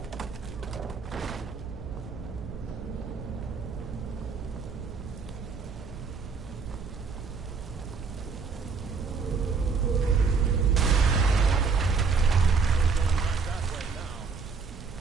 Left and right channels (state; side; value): quieter; left; 5.1 dB